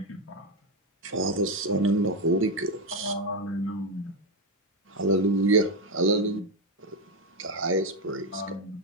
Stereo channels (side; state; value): both; normal; correlation 0.07